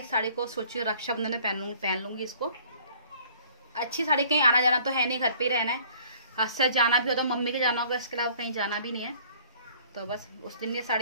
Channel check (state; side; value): inverted; both; correlation -0.54